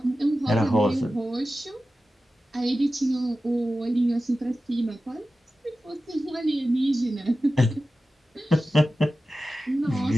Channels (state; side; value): normal; both; correlation 0.94